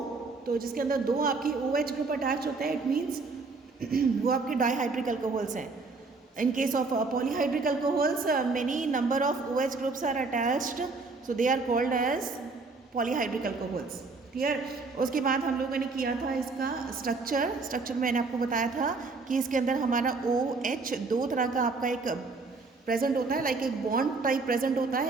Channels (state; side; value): quieter; left; 4.0 dB